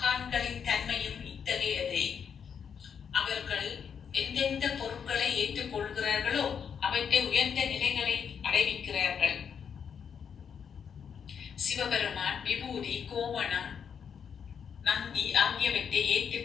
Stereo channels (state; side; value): quieter; right; 7.3 dB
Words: தன்மையும் இத்தகையதே. அவர்கள் எந்தெந்த பொருட்களை ஏற்றுக்கொள்கிறார்களோ அவற்றை உயர்ந்த நிலைகளை அடைவிக்கிறார்கள். சிவபெருமான் விபூதி, கோவணம், நந்தி ஆகியவற்றை